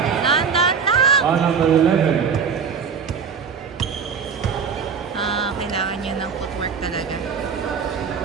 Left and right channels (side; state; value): left; quieter; 6.3 dB